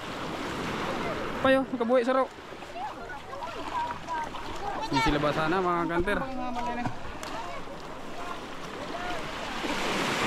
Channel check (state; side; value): identical; both; correlation 1.00